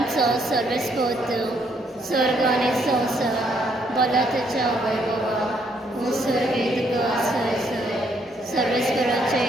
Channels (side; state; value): both; normal; correlation 0.71